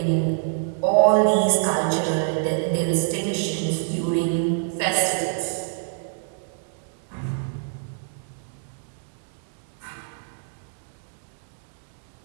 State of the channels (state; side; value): silent; left; digital silence